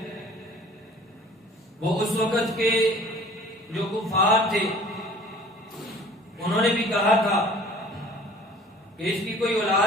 وہ اس وقت کے جو کفار تھے انہوں نے بھی کہا تھا کہ اس کی کوئی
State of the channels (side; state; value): both; normal; correlation 0.49